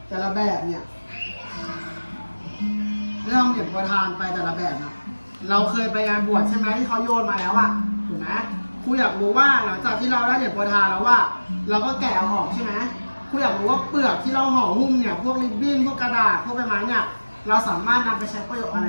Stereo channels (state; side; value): inverted; both; correlation -1.00